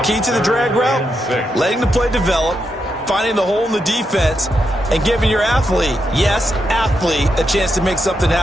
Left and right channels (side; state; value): both; normal; correlation 0.83